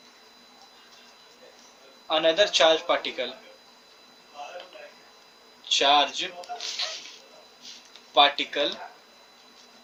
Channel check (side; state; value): both; identical; correlation 1.00